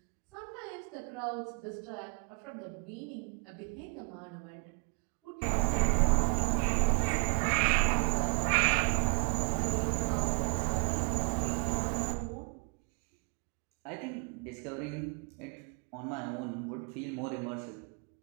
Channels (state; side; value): quieter; left; 39.3 dB